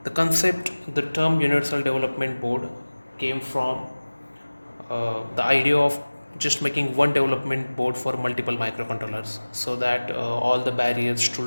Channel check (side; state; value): both; inverted; correlation -1.00